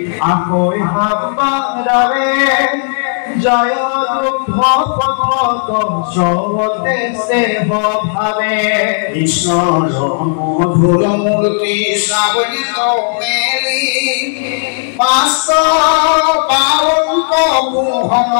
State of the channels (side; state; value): right; silent; digital silence